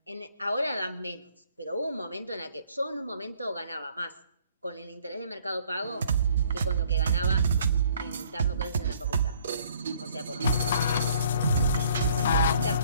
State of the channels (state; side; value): inverted; both; correlation -0.59